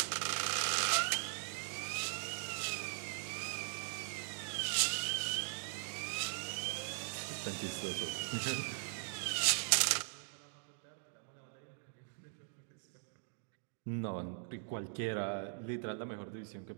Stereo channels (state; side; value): silent; left; digital silence